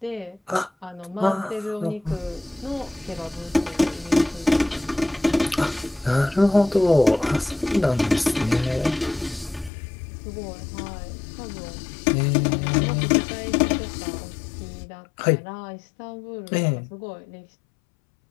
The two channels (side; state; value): right; drops out; at 9.7 s